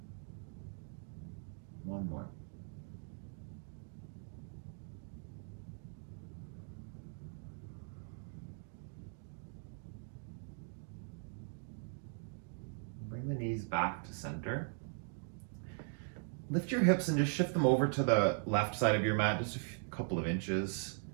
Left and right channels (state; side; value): silent; left; 51 dB below the other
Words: One more. Bring the knees back to center. Lift your hips and just shift them over to the left side of your mat, just a couple of inches.